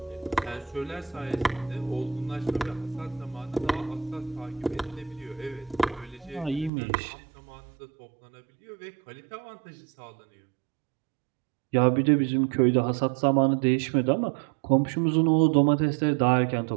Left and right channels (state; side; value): drops out; left; at 6.7 s